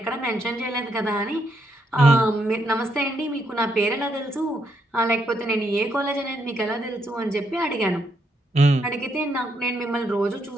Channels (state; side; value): normal; both; correlation 0.77